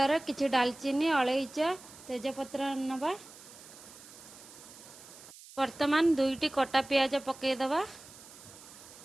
किछि डालचीनी अलैच तेजपत्र नवा। वर्तमान 2टी कटा पियाज पकईदवा।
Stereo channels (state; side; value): noise; right; hiss, 19 dB below the sound